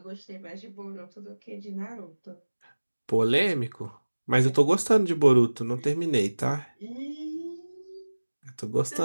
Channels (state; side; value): inverted; both; correlation -1.00